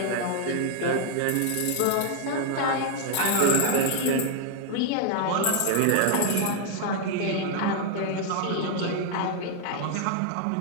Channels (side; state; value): both; different; correlation 0.00